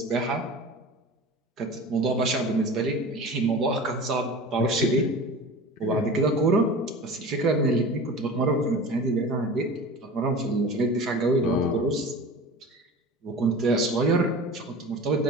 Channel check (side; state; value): both; normal; correlation 0.35